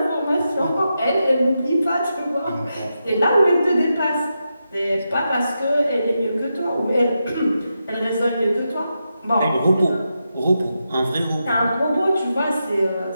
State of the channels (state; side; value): inverted; both; correlation -0.87